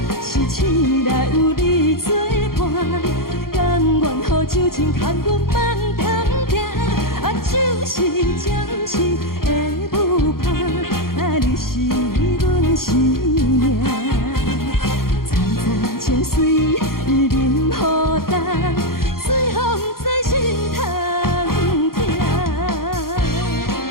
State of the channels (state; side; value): late; right; 0.93 ms